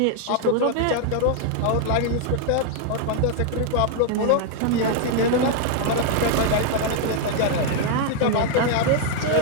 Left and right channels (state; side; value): different; both; correlation 0.00